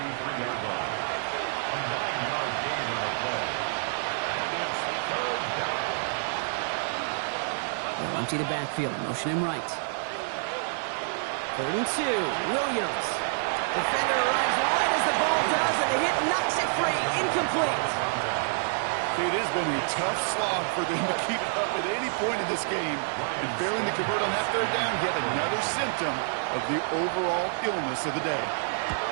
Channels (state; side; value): silent; left; digital silence